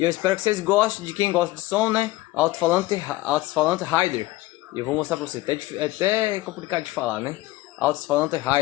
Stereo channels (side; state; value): right; quieter; 18.5 dB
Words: eu espero que vocês gostem, de quem gosta de som, né? Alto-falante Rider. E eu vou mostrar pra vocês. É até complicado de falar, né? Alto-falante